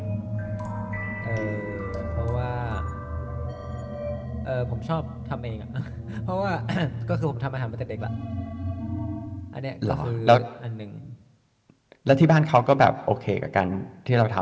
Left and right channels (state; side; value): identical; both; correlation 1.00